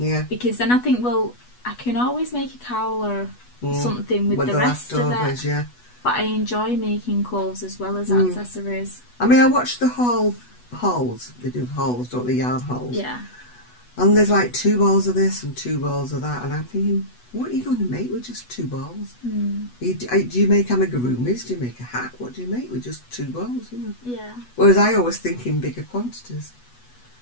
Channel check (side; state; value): right; late; 8.2 ms